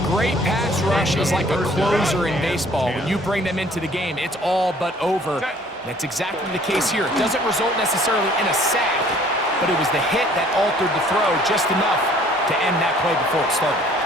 great pass rush is like a closer in baseball. When you bring them into the game, it's all but over. That's exactly the case here. It doesn't result necessarily in a sack, but it was the hit that altered the throw just enough to end that play before it started.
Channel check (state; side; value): normal; both; correlation 0.56